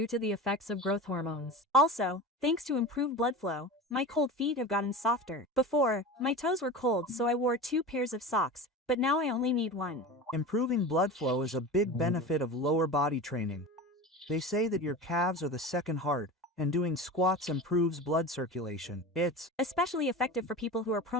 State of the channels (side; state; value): both; normal; correlation 0.30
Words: to the effects of growth hormones. also, thanks to improved blood flow, my cold feet have gotten softer. Before, my toes were cold so I wore 2 pairs of socks, but now I only need 1. Improving blood flow is a big benefit of lower body training. They say that your calves are the second heart, and doing squats improves blood circulation. It's Especially effective for people who are